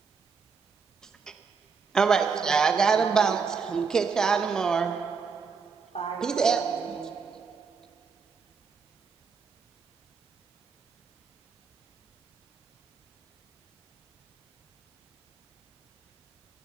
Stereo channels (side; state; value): left; quieter; 5.6 dB